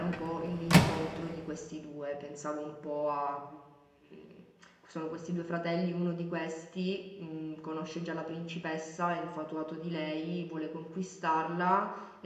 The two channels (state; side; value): identical; both; correlation 1.00